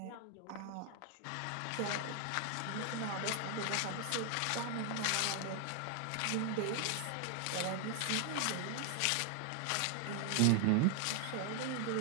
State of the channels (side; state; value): both; different; correlation 0.00